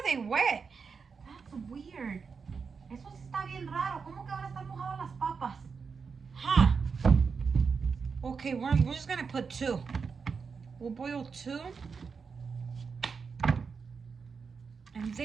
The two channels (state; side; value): quieter; left; 5.5 dB